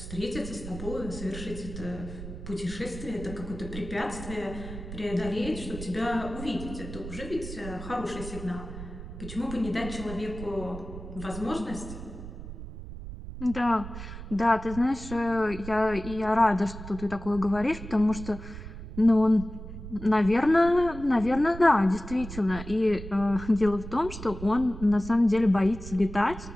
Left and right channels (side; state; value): right; noise; rumble, 11 dB below the sound